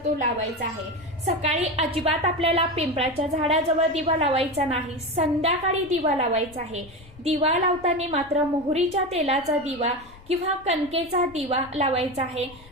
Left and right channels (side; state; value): left; noise; rumble, 22 dB below the sound